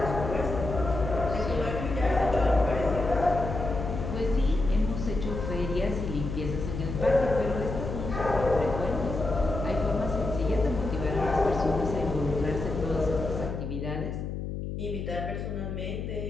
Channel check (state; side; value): noise; left; hum, 5 dB below the sound